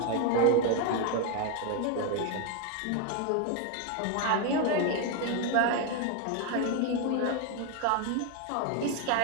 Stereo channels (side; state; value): both; different; correlation 0.01